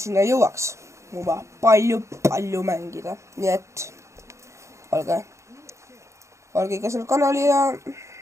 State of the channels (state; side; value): late; left; 0.14 ms